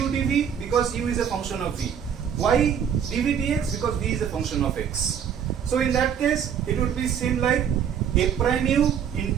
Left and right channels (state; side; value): quieter; left; 8.3 dB